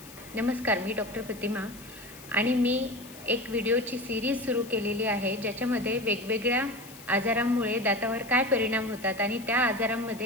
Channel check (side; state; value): left; noise; hiss, 18 dB below the sound